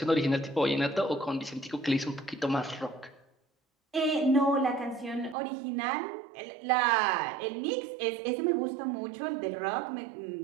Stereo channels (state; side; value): drops out; left; at 5.4 s